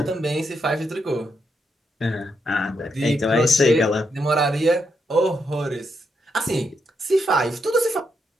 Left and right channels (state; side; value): normal; both; correlation 0.80